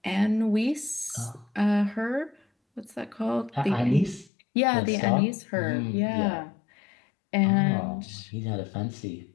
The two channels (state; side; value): drops out; right; at 4.3 s